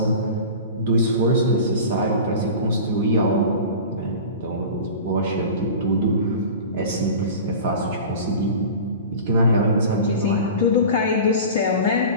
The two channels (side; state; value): both; inverted; correlation -0.35